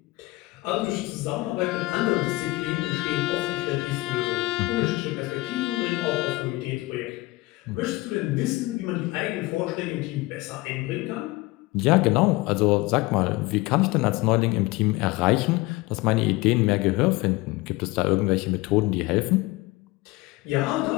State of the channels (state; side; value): quieter; right; 21.1 dB